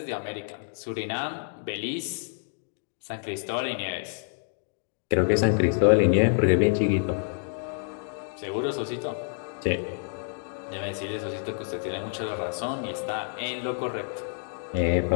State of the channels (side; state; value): right; silent; digital silence